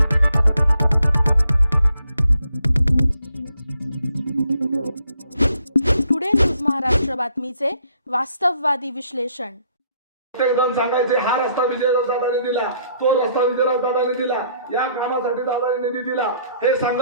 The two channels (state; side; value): inverted; both; correlation -0.68